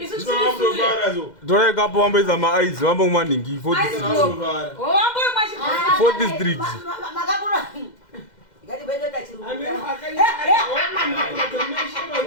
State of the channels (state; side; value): late; right; 2.1 ms